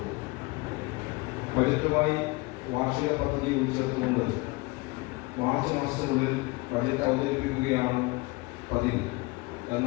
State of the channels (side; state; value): right; quieter; 24.5 dB